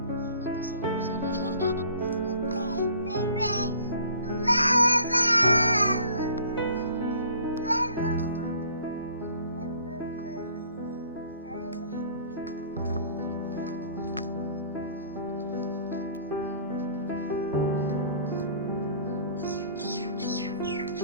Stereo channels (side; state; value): both; inverted; correlation -0.52